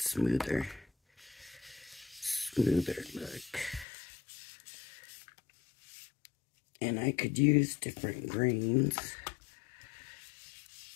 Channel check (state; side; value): drops out; right; at 3.9 s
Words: look. And I could use different greens.